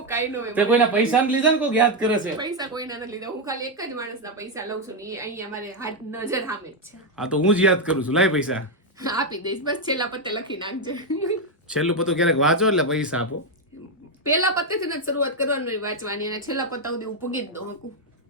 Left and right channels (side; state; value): both; normal; correlation 0.03